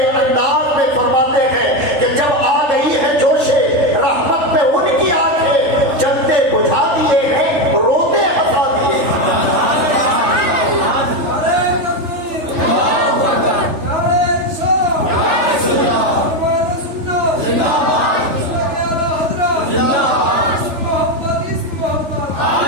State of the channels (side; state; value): left; late; 3.3 ms